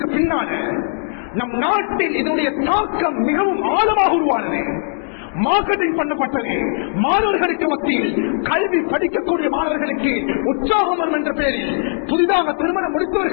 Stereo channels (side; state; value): right; silent; digital silence